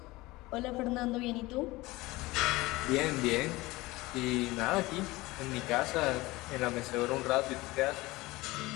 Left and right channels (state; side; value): quieter; right; 20.5 dB